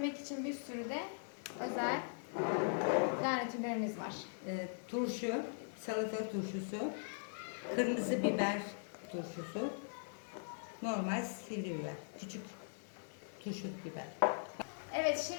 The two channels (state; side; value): silent; right; 51 dB below the other